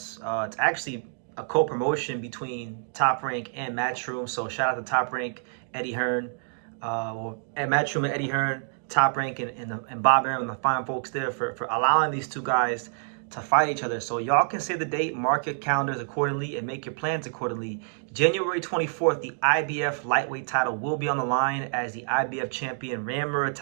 It's actually a co-promotion between Top Rank and Matchroom. So shout out to Top Rank, Eddie Hearn, and Matchroom and Eddie Hearn, Top Rank and Bob Arum and the fine folks there for allowing these two guys to fight each other. So y'all can say the date, mark your calendars accordingly, and make your plans accordingly. January 24th, the IBF lightweight title will be on the line as the IBF champion Raymond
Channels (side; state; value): left; silent; digital silence